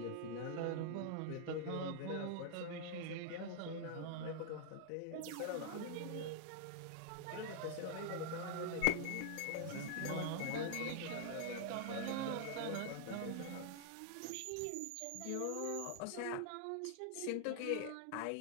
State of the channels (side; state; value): both; different; correlation -0.01